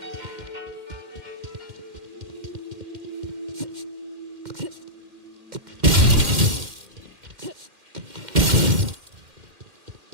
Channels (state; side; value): late; left; 2.1 ms